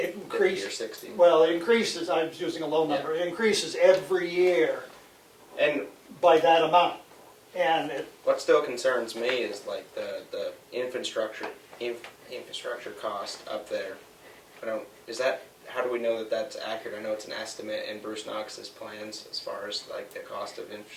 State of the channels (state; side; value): identical; both; correlation 1.00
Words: 50 increases. or 60. Well, it increases, I was using a low number, it increases every year And by that amount. And what still concerns me is like the infrastructure cost up there. How do we know that that's accurate? I know it's an estimate in Bruce Knox's plans as far as like the cost of